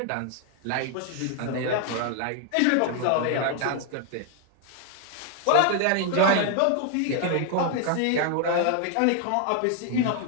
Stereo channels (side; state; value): both; different; correlation 0.00